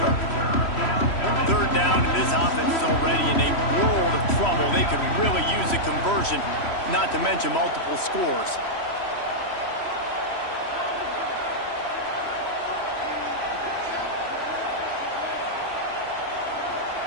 already in a world of trouble. They could really use a conversion, not to mention multiple scores.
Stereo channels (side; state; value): right; late; 3.1 ms